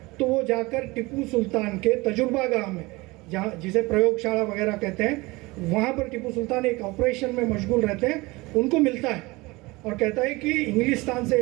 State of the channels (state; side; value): quieter; left; 22.8 dB